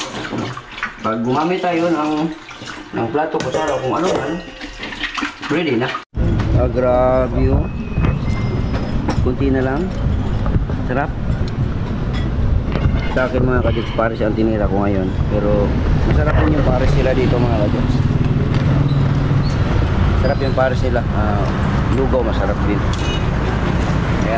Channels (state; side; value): identical; both; correlation 1.00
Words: Pag gumamit tayo ng plato, kutsara, kung ano man, ready na. Grabe yun. Kunti na lang. Sarap. Sa akin mga kajoks, pares ang tinira ko ngayon. Pero masarap din yung pares nila dito mga kajoks. Sarap yung pares nila. Lugaw masarap din.